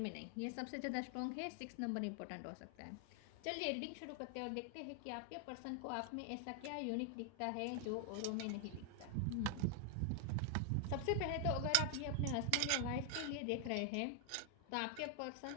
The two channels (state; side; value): different; both; correlation 0.00